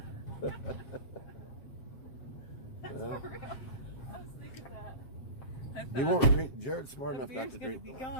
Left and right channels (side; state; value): right; late; 7.7 ms